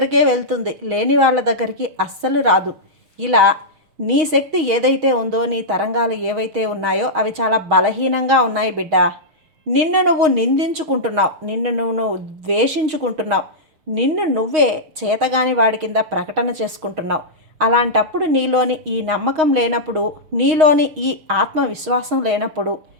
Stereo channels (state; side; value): late; left; 6.4 ms